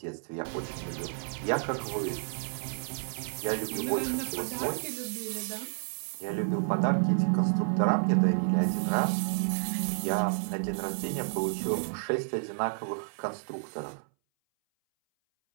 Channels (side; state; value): left; silent; 57 dB below the other